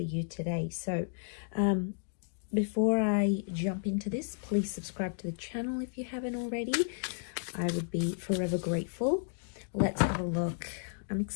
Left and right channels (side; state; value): right; silent; digital silence